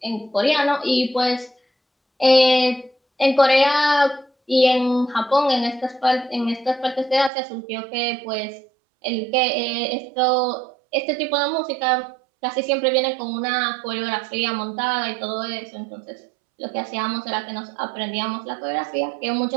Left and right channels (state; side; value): drops out; left; at 7.3 s